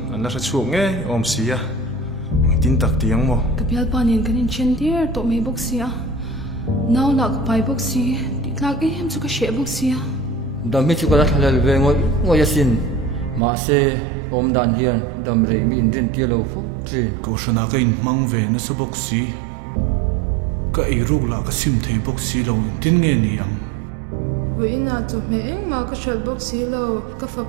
anh là chuộc nghe om xí à tin tắc tiếng mò cái bial panin cái chen tier to me box sia now la cái pai box si ti tlak em chu ka she box sia đam mi chu ka thalal ve ngoi yasin ma se om dan hian dam rei mi in rin tia lo fo tri câu shana cái in mang về nó số box xí cái ai ruk là cái sim thấy box xí lâu in tin nghe ni ang với na chu me eng ma ka shal box si lo ka fa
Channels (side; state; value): left; drops out; at 13.4 s